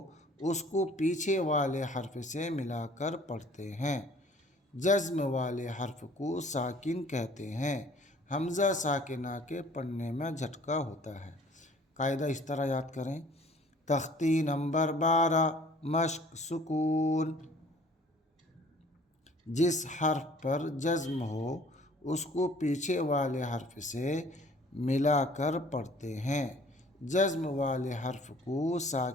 اس کو پیچھے والے حرف سے ملا کر پڑھتے ہیں۔ جزم والے حرف کو ساکن کہتے ہیں۔ حمزہ ساکنہ کے پڑھنے میں جھٹکا ہوتا ہے۔ قاعدہ اس طرح یاد کریں۔ تختی نمبر 12، مشق سکون۔ جس حرف پر جزم ہو اس کو پیچھے والے حرف سے ملا کر پڑھتے ہیں۔ جزم والے حرف کو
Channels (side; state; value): both; normal; correlation 0.53